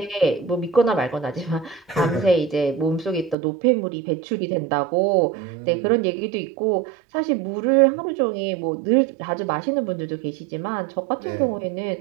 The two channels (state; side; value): drops out; left; at 3.4 s